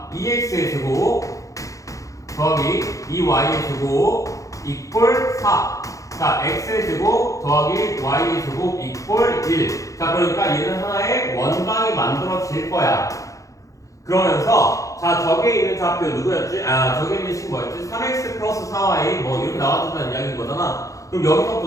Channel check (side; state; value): right; late; 0.16 ms